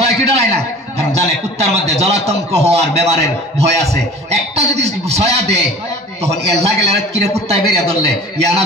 কি ডরাই না? কারণ জানে কুত্তার মধ্যে জলাতঙ্ক হওয়ার বেমারের ভয় আছে। একটা যদি ছয়া দেয়, তখন এল্লা গেলে কিরে কুত্তায় বেরিয়ে ধরলে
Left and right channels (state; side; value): normal; both; correlation 0.43